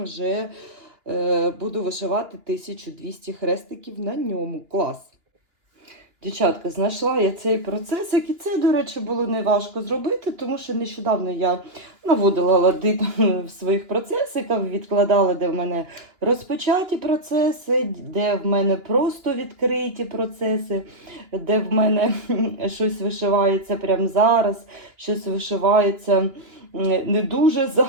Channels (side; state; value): left; late; 2.9 ms